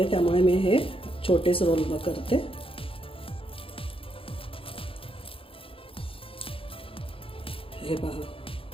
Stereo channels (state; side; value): late; right; 0.26 ms